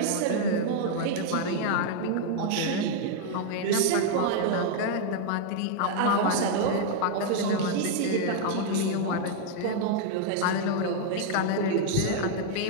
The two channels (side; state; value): both; different; correlation 0.00